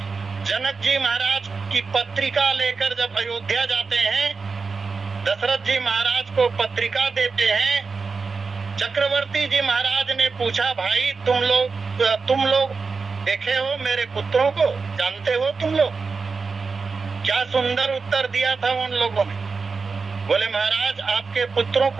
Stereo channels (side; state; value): left; quieter; 4.7 dB